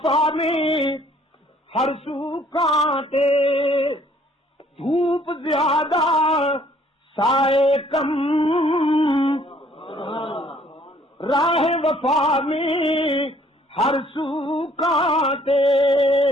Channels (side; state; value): both; normal; correlation 0.61